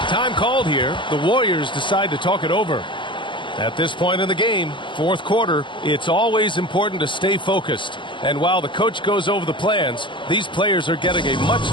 Time called here. The Warriors decide to talk it over. At this point in the game, fourth quarter, it's always important to stay focused. And while the coach goes over the plans, these players are getting a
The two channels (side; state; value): right; late; 0.23 ms